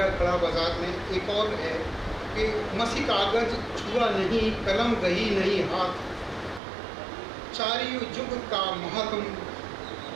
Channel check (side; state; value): left; drops out; at 6.6 s